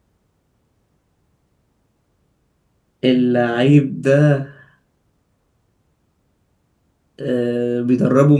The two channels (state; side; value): identical; both; correlation 1.00